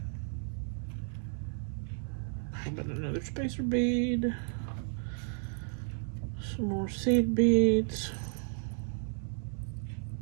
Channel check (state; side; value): silent; left; 56 dB below the other